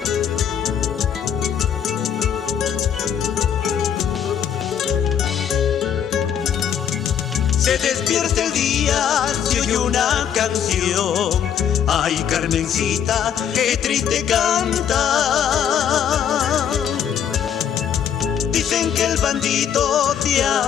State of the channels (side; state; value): right; quieter; 8.8 dB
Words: Se despierta el día, se oye una canción. Ay, Carmencita, qué triste canta. Dicen que el bandito te